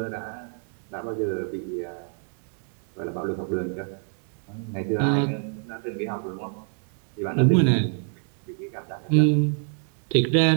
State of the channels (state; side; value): silent; left; 58 dB below the other